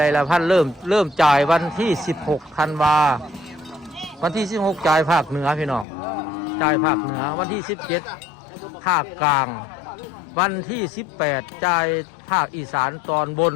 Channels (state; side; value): drops out; right; at 5.9 s